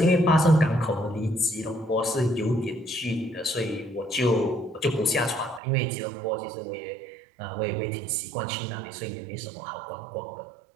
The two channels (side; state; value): left; drops out; at 5.6 s